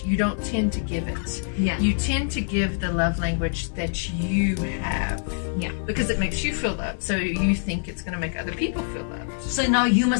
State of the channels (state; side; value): silent; right; 62 dB below the other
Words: you don't tend to give it. Yeah. You tend to give the love language that you have. Yeah. Because it makes you feel loved, so you think it's going to make other people feel loved. So now you